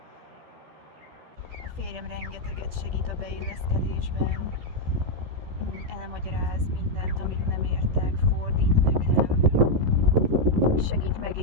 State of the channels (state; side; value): late; left; 12 ms